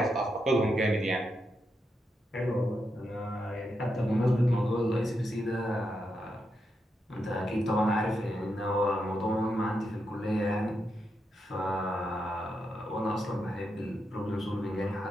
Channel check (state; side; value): normal; both; correlation 0.84